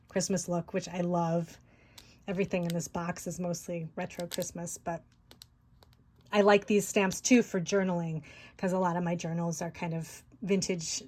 Christmas look, which I love. Everything in this box is mostly retro Christmas, but I like these stamps too for journaling, because a lot of my journals are kind of vintage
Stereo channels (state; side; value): identical; both; correlation 1.00